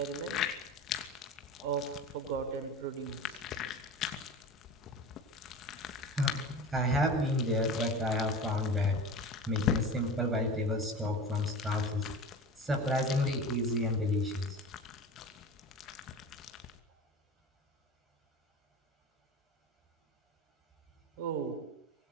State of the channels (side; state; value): both; normal; correlation 0.33